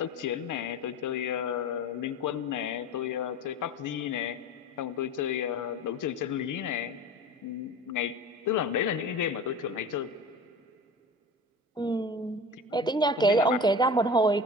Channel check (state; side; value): normal; both; correlation 0.34